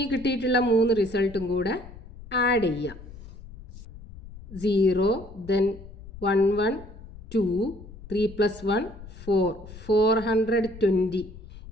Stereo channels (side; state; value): left; noise; rumble, 16 dB below the sound